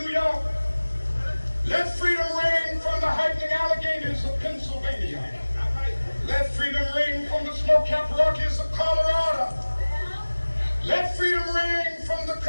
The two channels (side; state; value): both; inverted; correlation -1.00